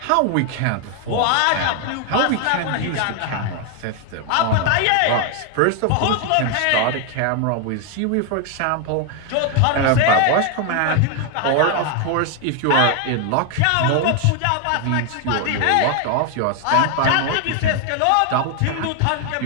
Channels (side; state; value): both; different; correlation 0.01